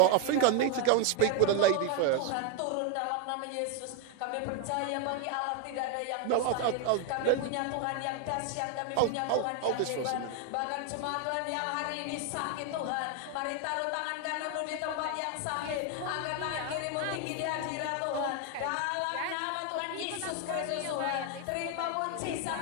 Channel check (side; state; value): both; different; correlation 0.01